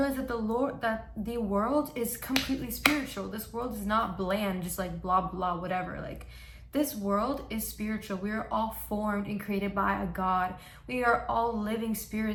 that the world is completely spiritual. This world is not bland, just like blah blah whatever. Like, this world is spiritual. We are all formed and created by a God. We are all living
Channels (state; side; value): identical; both; correlation 1.00